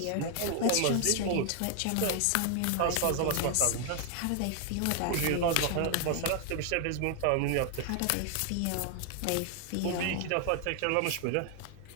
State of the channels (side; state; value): both; different; correlation 0.00